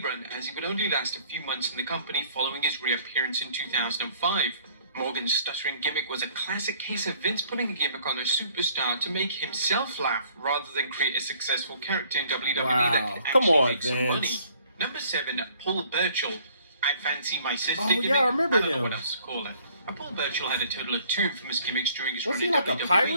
run, as he would only last a few months in the company following his reappearance in 2005. Morgan's stuttering gimmick was a classic case of Vince putting a gimmick on a superstar to make himself laugh, rather than create a successful character in WWE that could Come actually on, make some money. Vince. Number 7, Paul Burchill. I fancy my sister Oh, gimmick. yeah, I remember I don't know him. what else to call it. Paul Burchill had a total of 2 infamous gimmicks during his Was run he in like a WWE.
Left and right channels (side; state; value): both; inverted; correlation -0.59